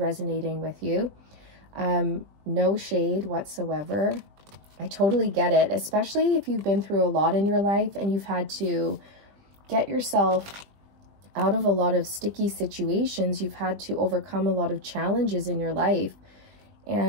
with you. No shade whatsoever. I totally get it, especially if you've been through a lot in your life and you've had to get yourself out of a lot of sticky situations. You've had to overcome a lot of challenges in your life,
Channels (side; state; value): left; late; 20 ms